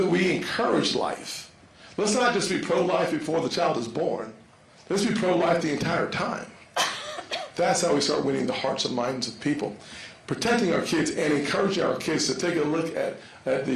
we encourage life? Let's not just be pro-life before the child is born. Let's be pro-life the entire time. That's how we start winning the hearts and minds of people. Protecting our kids and encouraging our kids to take a look at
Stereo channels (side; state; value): both; identical; correlation 1.00